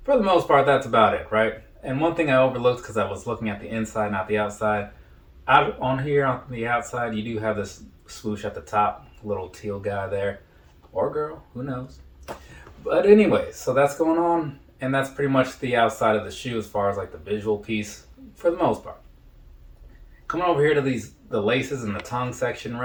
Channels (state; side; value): identical; both; correlation 1.00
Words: for the most part, that's about it, right? And one thing I overlooked because I was looking at the inside, not the outside. Out on here on the outside, you do have this swoosh at the top, little teal guy there, or girl, who knows? But anyways, so that's going on, and that's pretty much the outside of the shoe as far as like the visual piece for the most part. Coming over here to the laces and the tongue section,